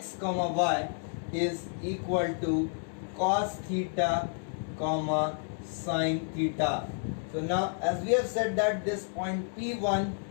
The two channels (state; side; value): silent; right; 57 dB below the other